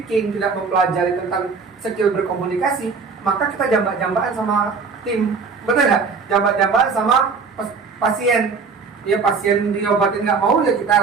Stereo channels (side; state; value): left; quieter; 5.0 dB